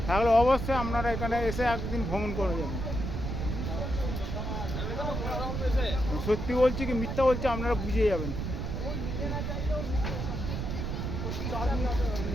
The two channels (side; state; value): right; noise; rumble, 3 dB below the sound